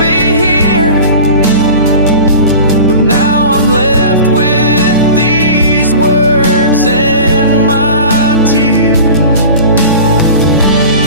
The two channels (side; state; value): both; inverted; correlation -0.36